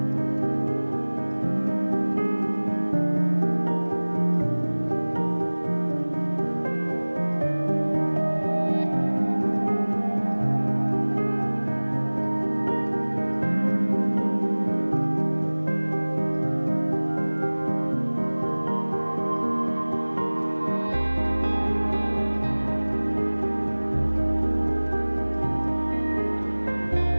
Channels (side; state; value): both; inverted; correlation -1.00